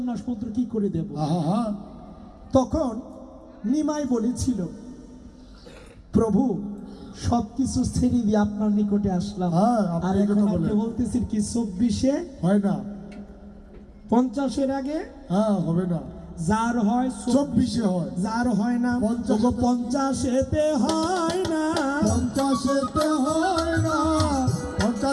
মন্ত্র কি করে দেব? আহা তখন নিমাই বলেছিল প্রভু সবকিছু ছেড়ে দিয়ে আপনার নিকটে আসলাম, হ্যাঁ, আপনি আর এই এখন কথা আপনি বলেন। বলতেছেন কি 24-এ হয় না, 50-এর আগে হ্যাঁ হবে না, যার হয় 24-এ হয়। যার হয় না 50-এতে হয় না, 50-এতে হয় না,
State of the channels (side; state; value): both; identical; correlation 1.00